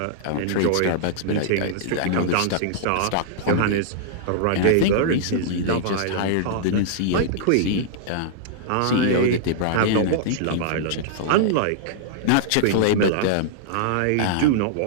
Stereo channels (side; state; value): both; different; correlation -0.02